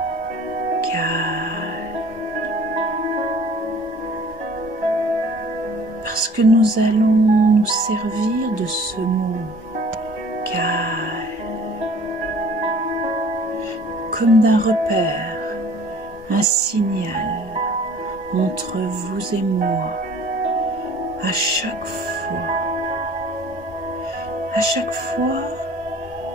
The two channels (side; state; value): both; normal; correlation 0.50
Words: calme, parce que nous allons nous servir de ce mot calme comme d'un repère, un signal entre vous et moi. À chaque fois